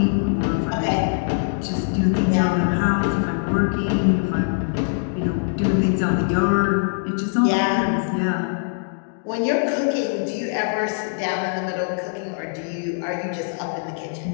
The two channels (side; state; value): right; silent; digital silence